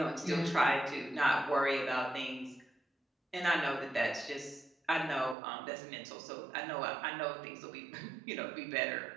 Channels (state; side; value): drops out; left; at 5.4 s